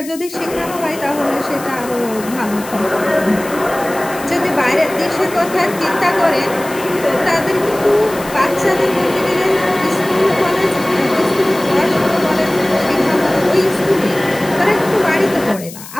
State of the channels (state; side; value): noise; left; hiss, 15 dB below the sound